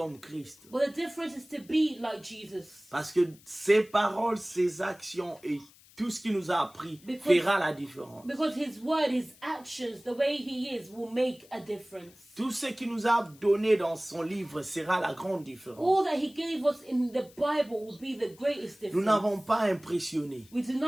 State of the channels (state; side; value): noise; left; hiss, 26 dB below the sound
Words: Christ. but the difference is to be like Jesus. Parce que ses paroles, ses actions et tout ce qu'il nous a appris fera la différence. Because his word, his actions, the way he is will make a difference. Tout ce qu'il nous a donné dans son livre sera la grande différence. All that he gave us in the Bible will be the greatest Nous difference. n'avons pas impressionné, We do